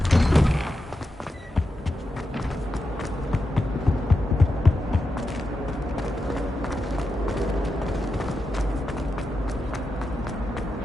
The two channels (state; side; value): normal; both; correlation 0.88